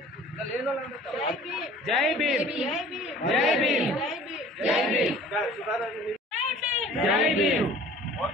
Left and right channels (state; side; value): normal; both; correlation 0.47